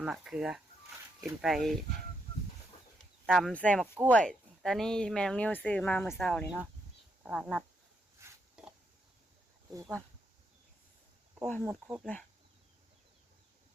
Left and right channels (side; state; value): both; normal; correlation 0.79